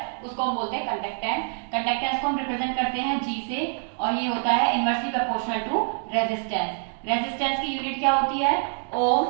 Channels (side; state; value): left; silent; 55 dB below the other